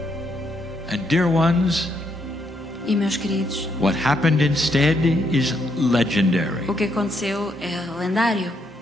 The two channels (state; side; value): normal; both; correlation 0.76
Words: And dear ones, E, meus queridos, what happened instead is legendary. o que aconteceu é lendário.